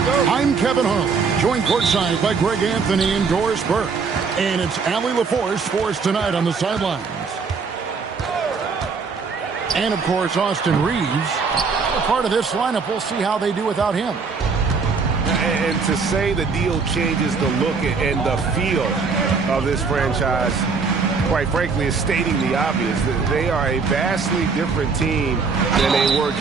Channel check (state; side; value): quieter; left; 5.0 dB